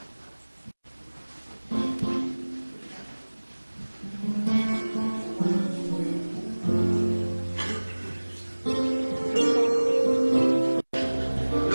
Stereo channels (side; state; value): both; inverted; correlation -1.00